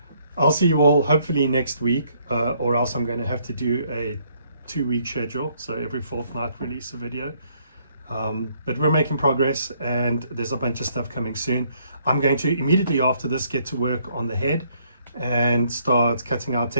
I'll see you all hopefully next week, or else I'm going to have to do a 2-week schedule, so every fortnight release a video. But we're making progress, and there's a bunch of stuff coming soon. I'm going to immediately after this get to work on the head and start cutting out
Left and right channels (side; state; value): both; inverted; correlation -0.67